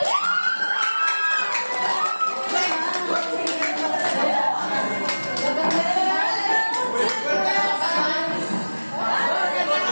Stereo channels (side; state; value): both; inverted; correlation -1.00